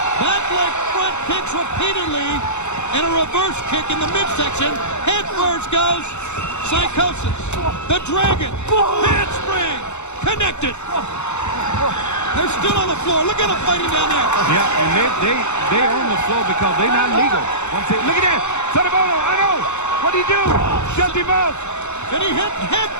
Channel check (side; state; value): right; late; 0.83 ms